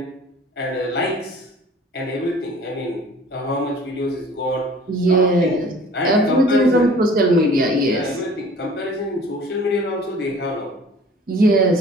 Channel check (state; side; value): normal; both; correlation 0.49